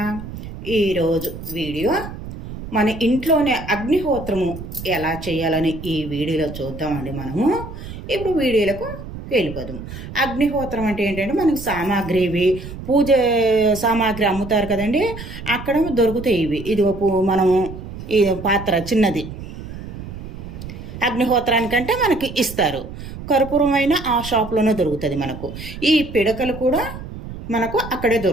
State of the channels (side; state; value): right; noise; rumble, 11 dB below the sound